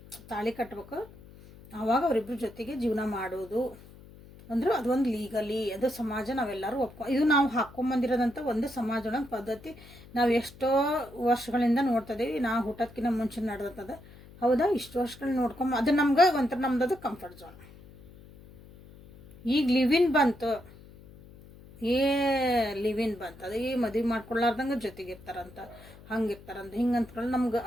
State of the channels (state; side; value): noise; left; hum, 20 dB below the sound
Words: ತಾಳಿ ಕಟ್ಟಬೇಕು, ಆವಾಗ ಅವರಿಬ್ಬರ ಜೊತೆಗೆ ಜೀವನ ಮಾಡೋದು ಅಂದ್ರೆ ಅದೊಂದು ಲೀಗಲಿ ಅದು ಸಮಾಜ ನಾವೆಲ್ಲರೂ ಇದು ನಾವು ಹಾಕ್ಕೊಂಬಂದಿರೋದಂಥ ಒಂದು ಸಮಾಜ ಪದ್ಧತಿ. ನಾವು ಎಷ್ಟೋ ವರ್ಷಗಳಿಂದ ನೋಡ್ತಿದ್ದೀವಿ, ನಾವು ಹುಟ್ಟೋದಕ್ಕಿಂತ ಮುಂಚೆ ನಡೆದದ. ಹೌದಾ, ಇಷ್ಟು ವರ್ಷಗಳು ನೋಡ್ಕೊಂಬ ಅದು ನಮ್ಗೆ ಒಂಥರ ನಮ್ದು ಕಂಫರ್ಟ್ ಝೋನ್. ಈಗ ಲಿವಿನ್ ಬಂತು, ಲಿವಿನ್ ಬಂತು, ಅದು ಮದುವೆ ಮಾಡ್ಕೊಳ್ಳಾರ್ದಂಗೆ ಜೊತೆಗಿರ್ತಾರಂತ, ಹಂಗಿರ್ತಾರಂತ, ಹಿಂಗೆ ಅಂದ್ಕೊಂಡು ನಮ್ಗೆ